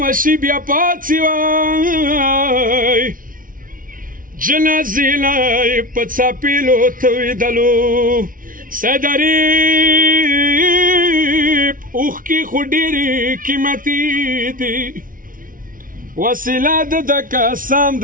وشي بیا پاڅي وای جنازې لا یې په څپېلو تویدلو سدریب اوښکې خو ډېرې قیمتي دي وسیله د قسم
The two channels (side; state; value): left; late; 0.39 ms